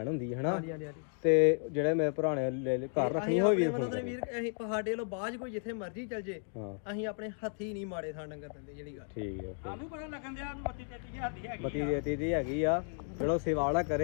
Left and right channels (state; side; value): silent; right; 55 dB below the other